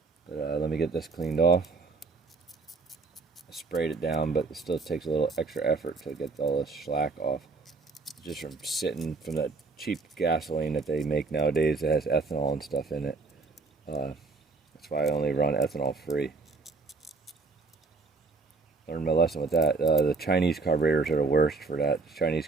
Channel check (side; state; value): left; quieter; 3.9 dB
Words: But let me get this cleaned off. I sprayed it down, but it still takes a little extra effort to get all this slack off. Just from sitting from that cheap gasoline that they make nowadays that has ethanol and stuff in it. That's why I only run ethanol free. Learned my lesson with that. The Chinese carburetors are the worst for that.